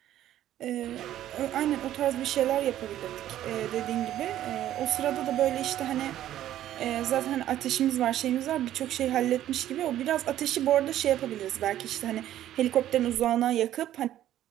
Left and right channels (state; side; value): quieter; left; 12.4 dB